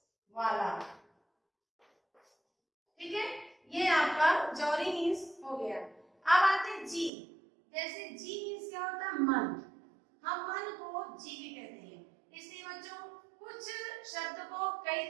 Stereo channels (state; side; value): drops out; left; at 7.1 s